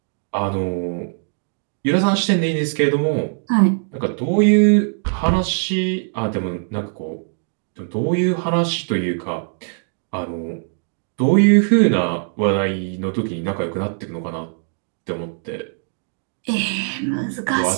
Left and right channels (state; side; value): silent; left; digital silence